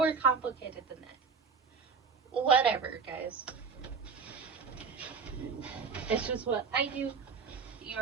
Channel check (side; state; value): left; quieter; 5.5 dB